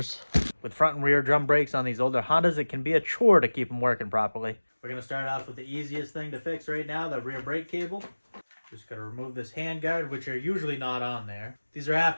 With front and rear drum brakes on these older Hondas, it can be a chore to keep them working properly. We're gonna start off with the easiest thing to fix right now, the rear brake cable. Just gotta remove this handguard, which are usually not on there. These are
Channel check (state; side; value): inverted; both; correlation -1.00